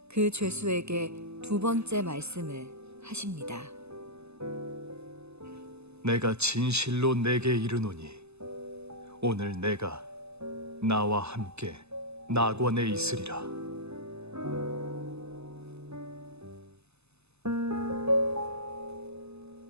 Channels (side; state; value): left; late; 0.80 ms